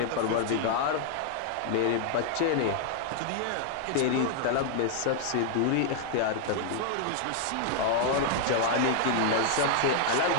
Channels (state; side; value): different; both; correlation -0.01